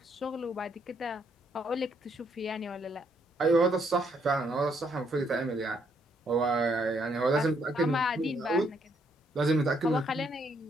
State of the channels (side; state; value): both; normal; correlation 0.71